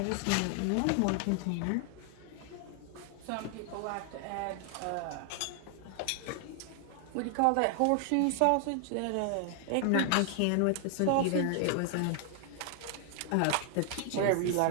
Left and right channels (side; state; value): both; different; correlation 0.00